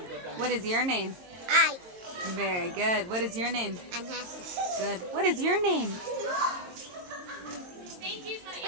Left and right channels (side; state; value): left; late; 22 ms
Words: What is your name? I. Very good. What is your name? Anasa. Good. What is your name?